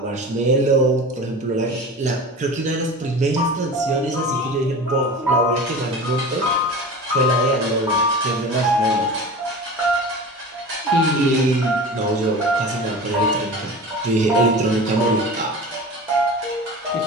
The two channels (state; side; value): normal; both; correlation 0.34